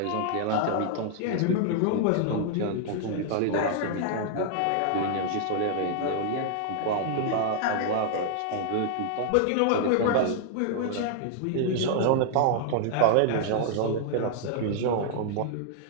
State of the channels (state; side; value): different; both; correlation -0.01